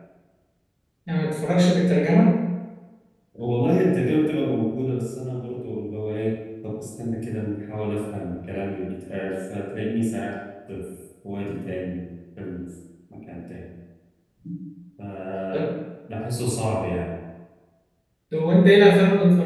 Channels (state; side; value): identical; both; correlation 1.00